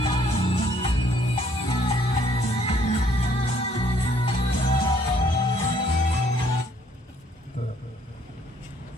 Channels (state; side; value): normal; both; correlation 0.64